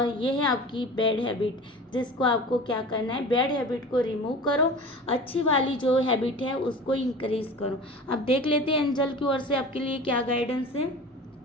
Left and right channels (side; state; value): both; normal; correlation 0.37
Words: ये है आपकी बैड हैबिट, जिसको आपको क्या करना है, बैड हैबिट को रिमूव करो, अच्छी वाली जो हैबिट है उसको इंक्रीज करो। अब देख लेते हैं एंजल की ओर से आपके लिए क्या गाइडेंस है।